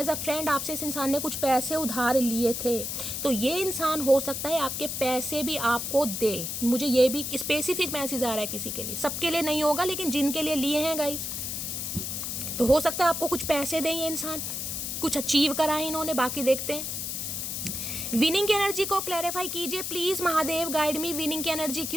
अ फ्रेंड आपसे इस इंसान ने कुछ पैसे उधार लिए थे, तो ये इंसान हो सकता है आपके पैसे भी आपको दे। मुझे ये भी स्पेसिफिक मैसेज आ रहा है किसी के लिए, सबके लिए नहीं होगा, लेकिन जिनके लिए लिए हैं गाइस, तो हो सकता है आपको कुछ पैसे दें ये इंसान, कुछ अचीव करा है इन्होंने। बाकी देखते हैं विनिंग की एनर्जी को क्लैरिफाई कीजिए please Mahadev, guide me. Winning की एनर्जी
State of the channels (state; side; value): noise; left; hiss, 4 dB below the sound